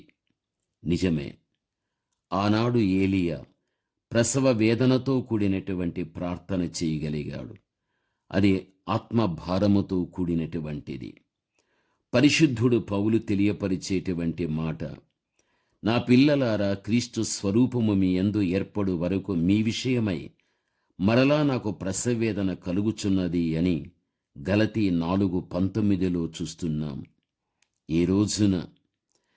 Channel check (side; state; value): both; identical; correlation 1.00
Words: నిజమే, ఆనాడు ఏలియా ప్రసవ వేదనతో కూడినటువంటి ప్రార్థన చేయగలిగాడు. అది ఆత్మభారముతో కూడినటువంటిది. పరిశుద్ధుడు పౌలు తెలియపరిచేటువంటి మాట, నా పిల్లలారా, క్రీస్తు స్వరూపము మీ యందు ఏర్పడు వరకు మీ విషయమై మరలా నాకు ప్రసవేదన కలుగుచున్నది అని గలతీ 4:19 చూస్తున్నాం. ఈ రోజున